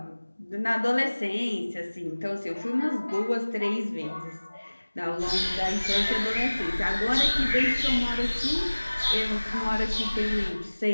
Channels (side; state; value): both; inverted; correlation -1.00